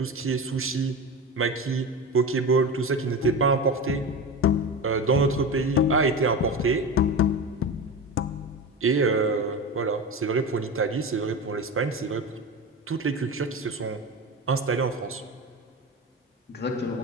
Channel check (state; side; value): normal; both; correlation 0.25